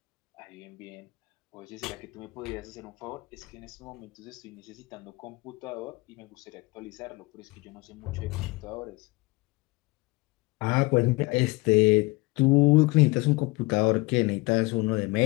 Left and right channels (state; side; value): quieter; right; 23.6 dB